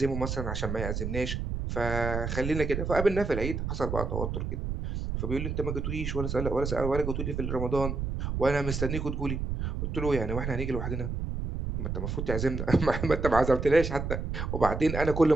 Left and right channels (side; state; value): right; noise; rumble, 3 dB below the sound